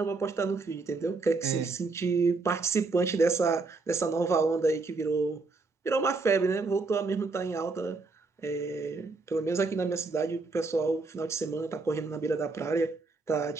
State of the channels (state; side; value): quieter; left; 3.8 dB